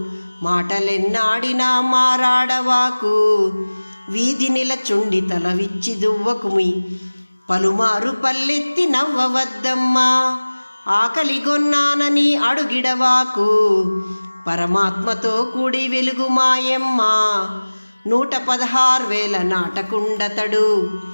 మాటలెన్నాడినా మారాడవాకు, వీధి నిలచుండి తల విచ్చి దువ్వకుమి, పలుమారు పల్లెత్తి నవ్వవద్దమ్మా, ఆకలిగొన్నానని అడుగిడవాకు, పరమాత్మతో కూడి వెలుగు మాయమ్మ, 116,000 నాటకుండతడు,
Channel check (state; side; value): inverted; both; correlation -1.00